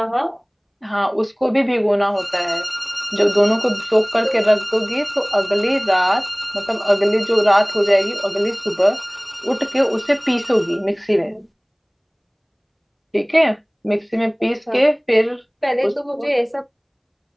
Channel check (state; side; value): identical; both; correlation 1.00